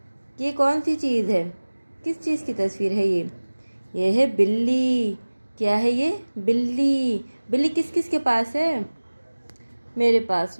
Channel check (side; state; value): both; inverted; correlation -1.00